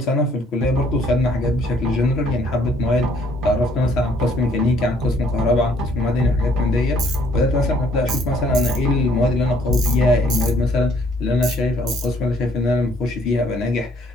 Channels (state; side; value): normal; both; correlation 0.63